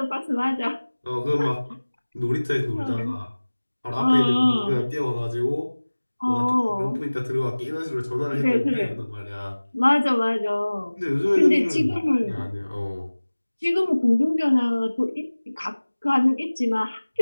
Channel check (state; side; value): inverted; both; correlation -1.00